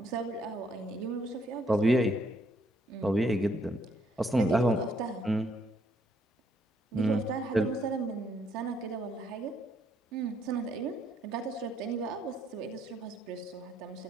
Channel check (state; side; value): normal; both; correlation 0.71